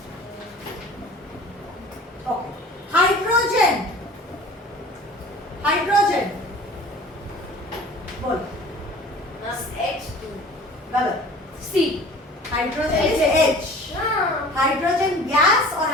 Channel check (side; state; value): both; normal; correlation 0.45